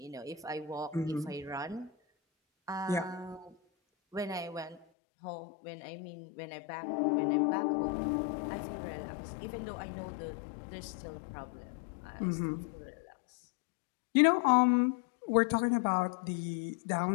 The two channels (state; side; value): drops out; right; at 4.9 s